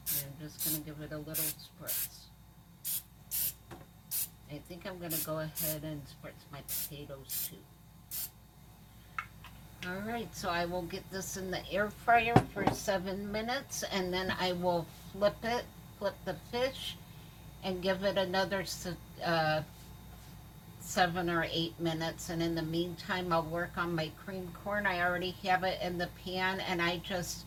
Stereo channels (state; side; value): identical; both; correlation 1.00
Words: I'm just going to give it a little spritz. I think I'm going to go ahead and spritz my potatoes too. Alright, so I will get this in the air fryer for 7 minutes, and then I will flip the fish, and give it another 7 or 8 minutes. And in the meantime, I'll work on my creamed corn. I already have it in the pan, and I just